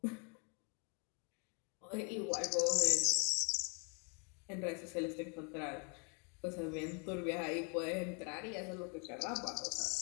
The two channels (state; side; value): quieter; right; 37.2 dB